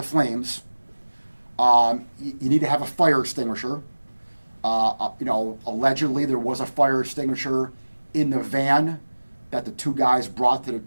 flames. You need to have a fire extinguisher. Allegedly there was a fire extinguisher in the van that the two guys brought to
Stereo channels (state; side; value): inverted; both; correlation -1.00